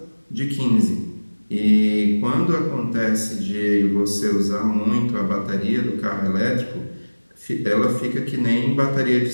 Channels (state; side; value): inverted; both; correlation -1.00